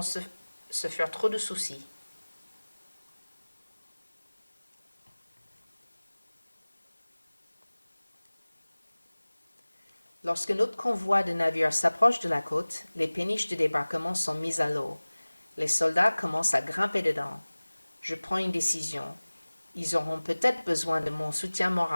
se faire trop de soucis. Lorsque notre convoi de navires s'approche de la côte, les péniches de débarquement sont mises à l'eau. Les soldats commencent à grimper dedans. Je prends une décision. Ils auront peut-être besoin de mon soutien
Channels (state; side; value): inverted; both; correlation -1.00